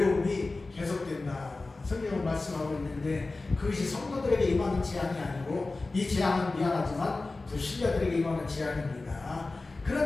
계속된다. 성경은 말씀하고 있는데 그것이 성도들에게 임하는 재앙이 아니고 이 재앙은 미안하지만 불신자들에게 임하는 재앙입니다.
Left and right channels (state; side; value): quieter; right; 3.4 dB